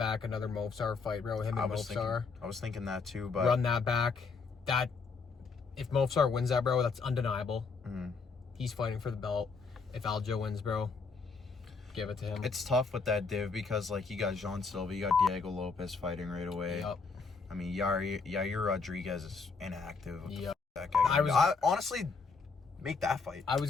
another Mofsar fight, bro, him and Mofsar. I was thinking that too, but run that back. If Mofsar wins that, bro, that's undeniable. He's fighting for the belt. If Aljo wins, bro, give it to him. it's tough with that div because, like, you got Jean Silva, you got Diego Lopez fighting right away. Yep. I mean, Yair Rodriguez is inactive. Yep. That guy. I honestly make that fight. I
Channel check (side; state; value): right; quieter; 4.7 dB